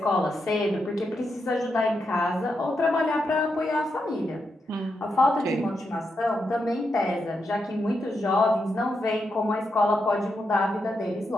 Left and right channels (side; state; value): both; normal; correlation 0.84